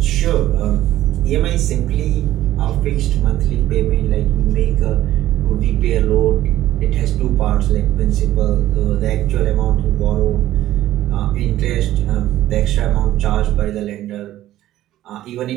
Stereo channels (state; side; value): quieter; left; 13.9 dB